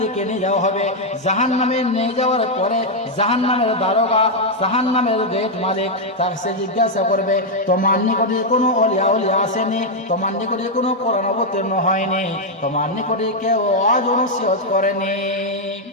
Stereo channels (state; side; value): normal; both; correlation 0.00